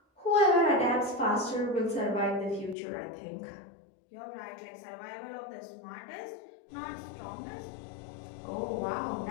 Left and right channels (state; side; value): drops out; right; at 2.8 s